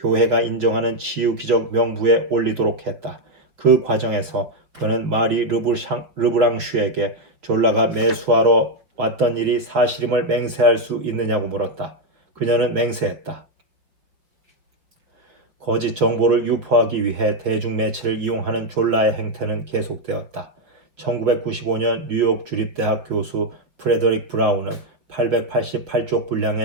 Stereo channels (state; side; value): late; left; 5.4 ms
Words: 인정하는 치유 기적 명부에 올리도록 했다. 그 과정에서 그는 마리 르브랑슈에게 졸라가 매수하러 왔던 일이 사실임을 맹세할 수 있느냐고 물었다. 그녀는 맹세했다. 거짓 정보를 유포하기 위해 대중매체를 이용하는 졸라의 행태는 계속되었다. 1995년 뉴욕 주립대학 교수 프레더릭 브라운은 888쪽